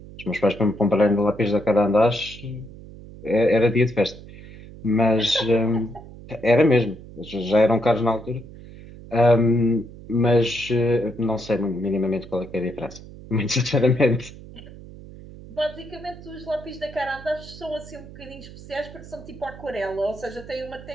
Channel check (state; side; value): noise; right; hum, 17 dB below the sound